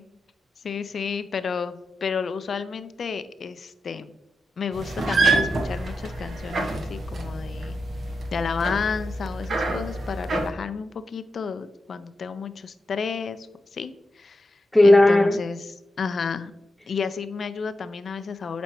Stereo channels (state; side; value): normal; both; correlation 0.89